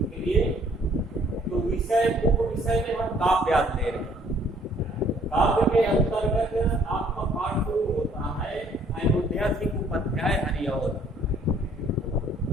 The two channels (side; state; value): both; normal; correlation 0.60